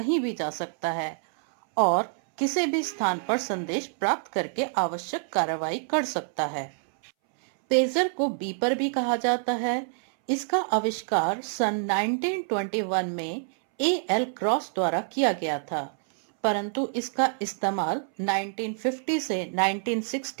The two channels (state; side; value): silent; left; 60 dB below the other